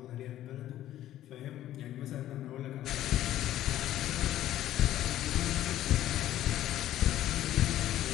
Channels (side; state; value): right; quieter; 13.1 dB